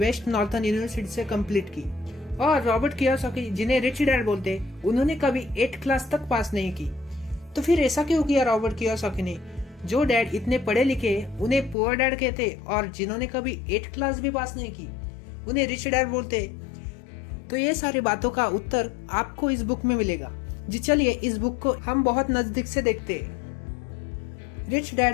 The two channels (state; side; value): drops out; right; at 11.8 s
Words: Northern University से कंप्लीट की। और रॉबर्ट कियोसाकी, जिन्हें रिच डैड बोलते, उन्होंने कभी 8th क्लास तक पास नहीं की। तो फिर ऐसा क्यों किया रॉबर्ट कियोसाकी ने? जो डैड इतने पढ़े लिखे उन्हें पुअर डैड कहते, और जिन्होंने कभी 8th क्लास भी पास नहीं की उन्हें रिच डैड बोलते। तो ये सारी बातों का उत्तर आपको इस बुक में मिलेगा। जी चलिए इस बुक को हम बहुत नजदीक से देखते हैं। रिच